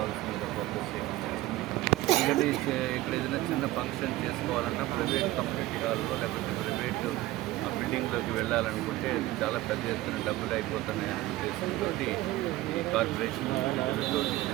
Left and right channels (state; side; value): quieter; left; 17.3 dB